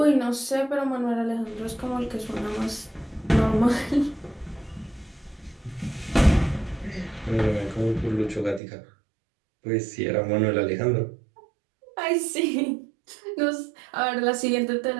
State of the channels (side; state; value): left; drops out; at 8.6 s